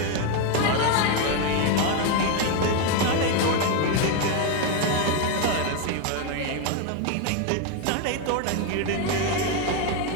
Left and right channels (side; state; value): both; different; correlation 0.01